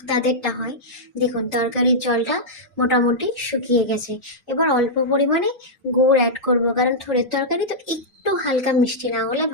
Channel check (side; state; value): both; normal; correlation -0.09